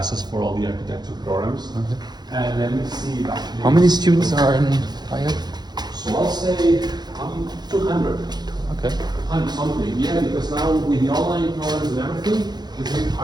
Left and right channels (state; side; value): late; left; 0.20 ms